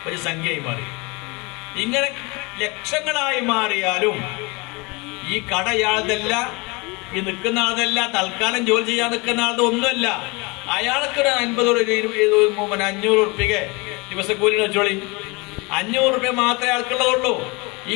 ഒരു സംഖ്യയായി മാറി. ഇങ്ങനെ ലക്ഷങ്ങളായി മാറിയാലും ഈ കട ഇയാളതല്ല, ഈ നിൽക്കുന്ന ആളതല്ല, തൽക്കാലം ജോലി ചെയ്യാൻ നിൽക്കുന്ന ആളത് ഒന്നുമല്ല. അയാൾക്ക് ഒരു 500 റുപ്യക്ക് ദിവസക്കൂലി വെച്ചോളി. 500 റുപ്യ മാത്രമേ അയാൾക്കുള്ളതുള്ളൂ. ഈ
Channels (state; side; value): quieter; right; 27.0 dB